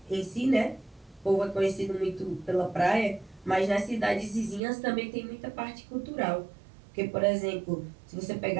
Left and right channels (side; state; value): left; drops out; at 4.6 s